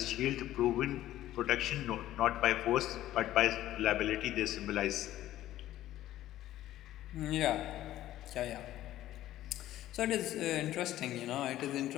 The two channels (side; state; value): right; quieter; 13.9 dB